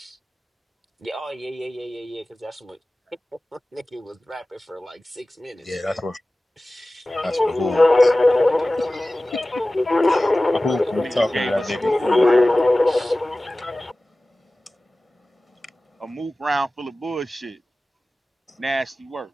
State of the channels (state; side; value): normal; both; correlation 0.97